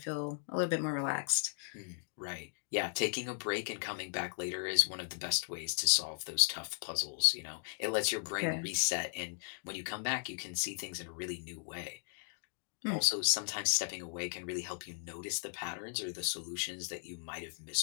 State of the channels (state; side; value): silent; right; digital silence